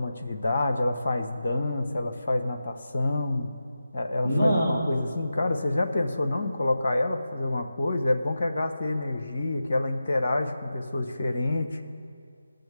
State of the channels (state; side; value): inverted; both; correlation -0.92